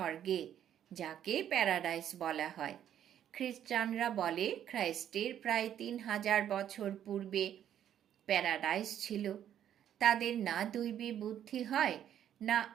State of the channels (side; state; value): left; quieter; 10.2 dB